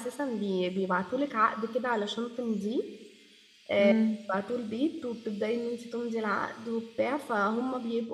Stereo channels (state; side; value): identical; both; correlation 1.00